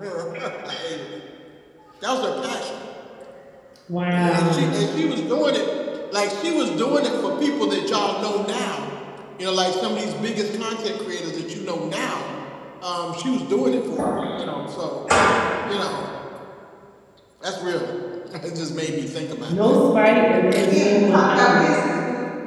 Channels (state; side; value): identical; both; correlation 1.00